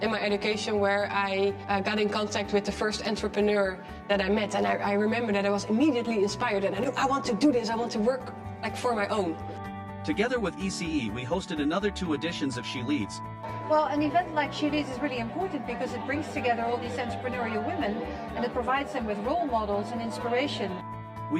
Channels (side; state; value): both; identical; correlation 1.00